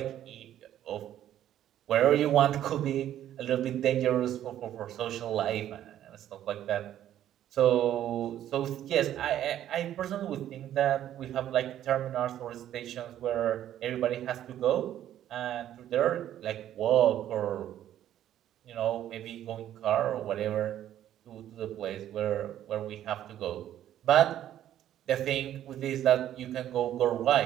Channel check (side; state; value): left; quieter; 11.6 dB